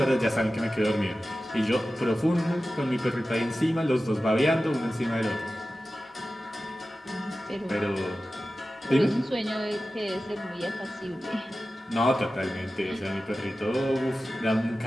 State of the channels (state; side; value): normal; both; correlation 0.94